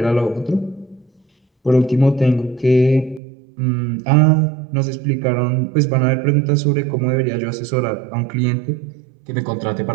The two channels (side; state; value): left; drops out; at 3.2 s